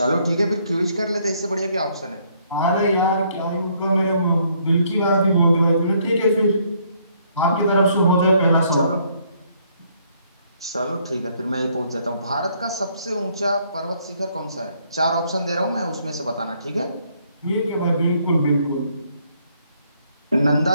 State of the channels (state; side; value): inverted; both; correlation -0.68